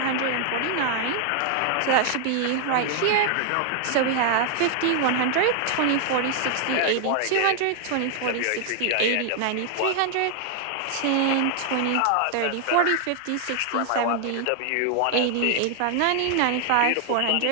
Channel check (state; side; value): different; both; correlation 0.00